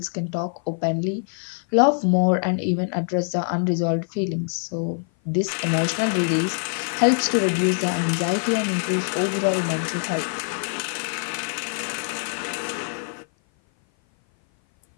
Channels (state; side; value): silent; right; 56 dB below the other